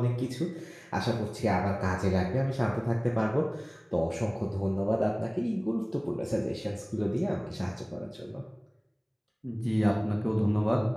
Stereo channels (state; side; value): identical; both; correlation 1.00